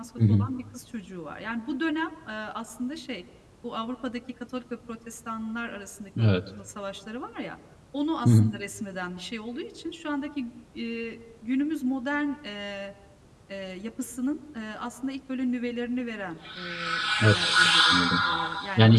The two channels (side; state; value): both; identical; correlation 1.00